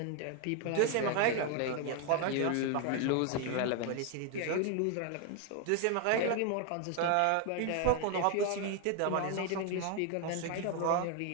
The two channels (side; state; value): both; different; correlation 0.01